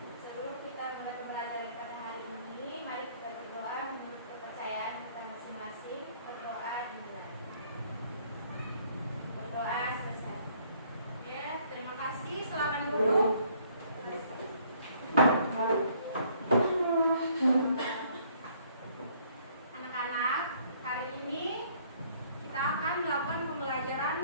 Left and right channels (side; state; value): both; inverted; correlation -0.62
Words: Sebelum kita mulai pembelajaran pada hari ini, mari kita berdoa menurut kepercayaan kita masing-masing. Berdoa dimulai. Berdoa selesai. Oke, terima kasih. Silakan duduk. Anak-anak, hari ini kita akan melakukan